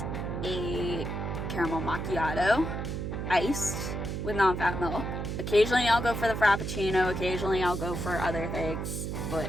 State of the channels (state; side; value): noise; right; hum, 4 dB below the sound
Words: a caramel macchiato, iced with non-fat milk. Occasionally I'll go for the Frappuccino, occasionally I'll go for other things. But